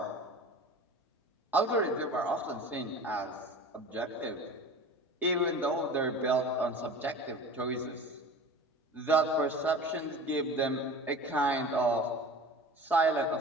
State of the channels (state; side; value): normal; both; correlation 0.38